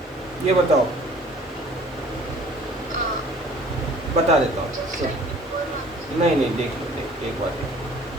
ये बताओ, बता देता हूँ, नहीं देख लो, एक बार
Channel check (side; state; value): both; normal; correlation 0.51